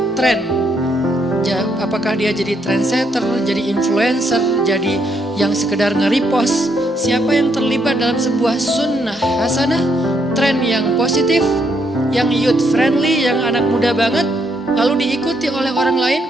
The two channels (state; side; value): normal; both; correlation 0.75